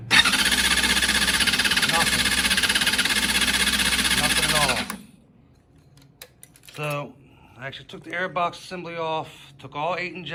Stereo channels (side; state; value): both; identical; correlation 1.00